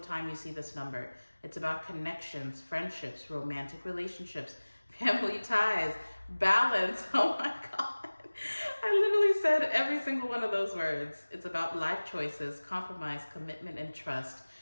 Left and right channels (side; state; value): both; inverted; correlation -1.00